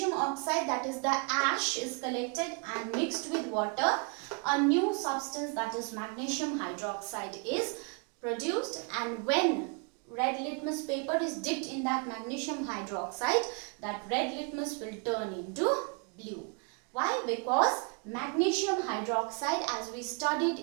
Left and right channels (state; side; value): quieter; left; 36.0 dB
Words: oxide, that is the ash, is collected and mixed with water, a new substance, that is magnesium hydroxide, is produced, and when red litmus paper is dipped in that magnesium hydroxide, that red litmus will turn into blue. Why? Because magnesium hydroxide, as we studied